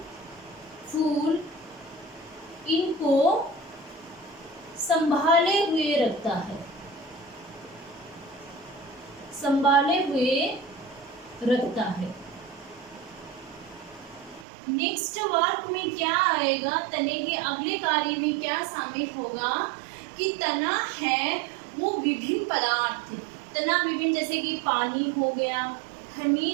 फूल इनको संभाले हुए रखता है, संभाले हुए रखता है। नेक्स्ट वर्क में क्या आएगा, तने के अगले कार्य में क्या शामिल होगा कि तना है वो विभिन्न पदार्थ, तना विभिन्न, जैसे कि पानी हो गया,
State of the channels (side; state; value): left; drops out; at 14.5 s